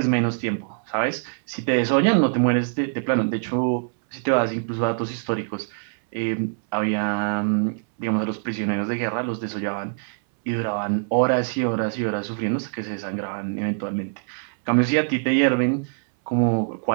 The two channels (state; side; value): silent; left; 63 dB below the other